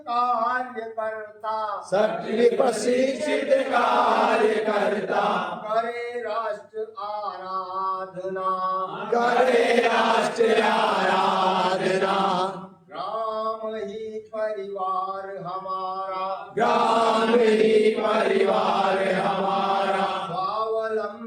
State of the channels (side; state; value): both; identical; correlation 1.00